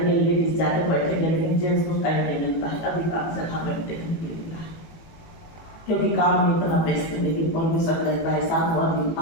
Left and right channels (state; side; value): late; right; 18 ms